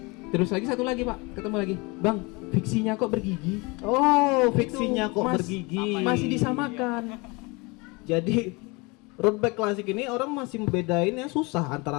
Terus lagi satu lagi pak, ketemu lagi. Bang, fiksinya kok bergigi? Oh, fiksinya Itu kok mas- bergigi. Masih disamakan. Jadi road bike klasik ini orang masih membedainnya susah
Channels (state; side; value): quieter; right; 26.9 dB